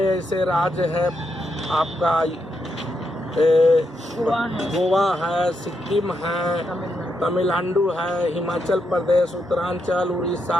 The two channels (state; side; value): normal; both; correlation 0.82